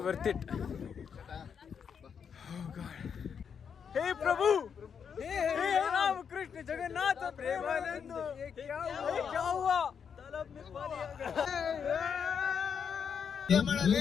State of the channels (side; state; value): right; quieter; 7.0 dB